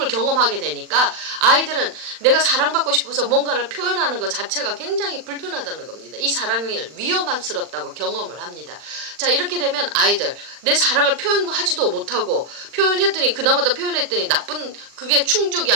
경험하게 되니까 아이들은 내가 사랑받고 싶어서 뭔가를 표현하는 것 자체가 굉장히 불편하다는 겁니다. 이 사랑을 위험스럽다고 경험을 합니다. 자, 이렇게 되면 아이들 내 사랑을 표현하지도 못하고 표현했더니 그나마도 표현했더니 나쁜 그게 충족이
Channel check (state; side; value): late; left; 40 ms